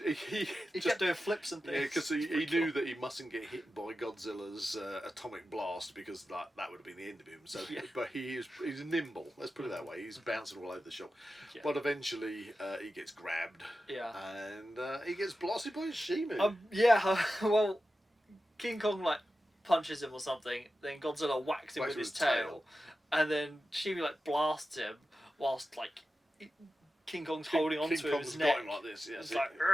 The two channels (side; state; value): both; normal; correlation 0.92